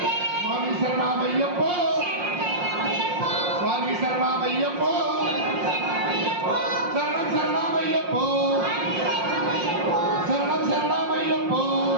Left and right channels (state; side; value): late; left; 5.6 ms